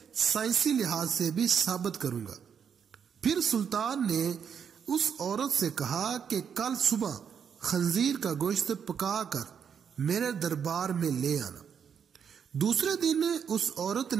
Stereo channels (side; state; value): left; quieter; 7.4 dB